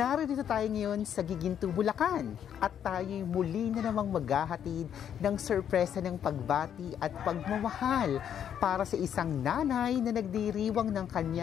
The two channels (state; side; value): quieter; right; 9.1 dB